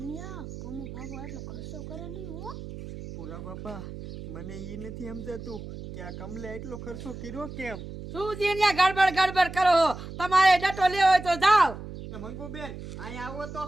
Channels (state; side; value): noise; right; hum, 11 dB below the sound